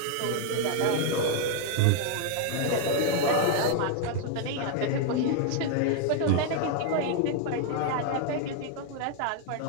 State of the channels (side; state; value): both; different; correlation 0.00